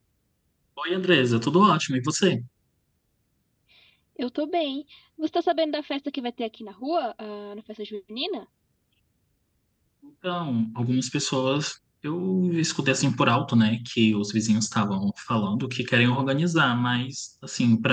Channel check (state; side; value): identical; both; correlation 1.00